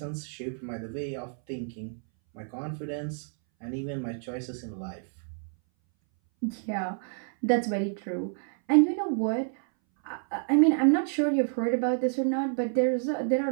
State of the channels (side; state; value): left; silent; 59 dB below the other